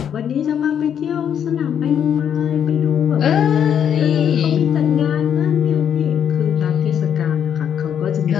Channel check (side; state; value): right; quieter; 8.7 dB